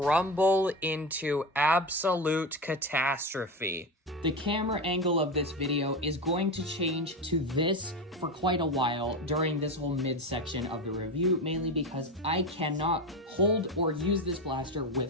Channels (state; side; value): normal; both; correlation 0.20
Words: into absolute catastrophe. The camera angle of this video is going to change to this for quite a while during this whole midsection of the review, mainly because I cannot hold or use this blaster